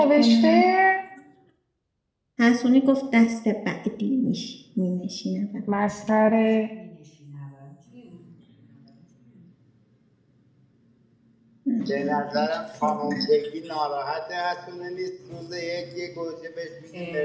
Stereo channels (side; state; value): both; identical; correlation 1.00